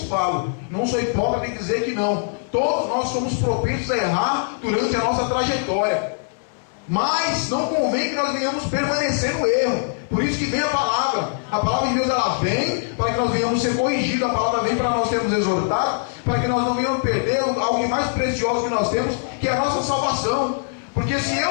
falo, não sou hipócrita em dizer que não, todos nós somos propensos a errar durante a nossa trajetória. Mas não convém que nós venhamos permanecer no erro. Por isso que vem a palavra. A palavra de Deus, ela vem para que nós venhamos ser corrigidos. A palavra vem para nós sermos exortados, para que nós não venhamos perder algo mais precioso que nós temos, que é a nossa salvação. Porque se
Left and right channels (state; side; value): silent; right; 57 dB below the other